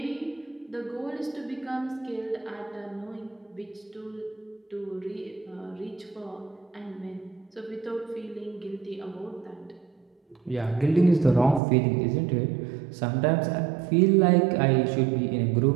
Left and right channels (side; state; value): left; drops out; at 11.6 s